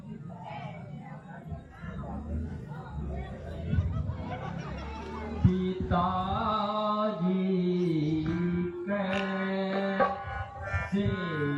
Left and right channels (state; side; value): identical; both; correlation 1.00